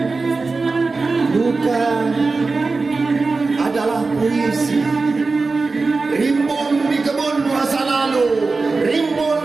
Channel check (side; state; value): left; quieter; 3.9 dB